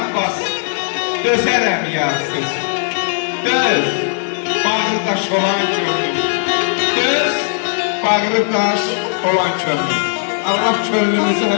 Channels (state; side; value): silent; right; digital silence